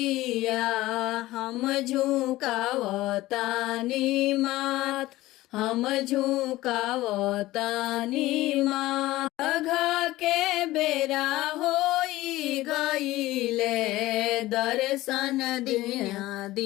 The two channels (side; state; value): right; quieter; 17.3 dB